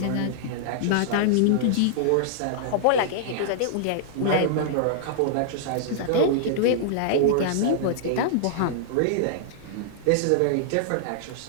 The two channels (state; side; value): different; both; correlation -0.01